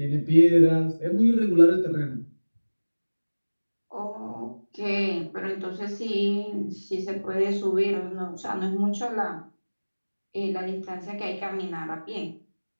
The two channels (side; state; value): both; inverted; correlation -1.00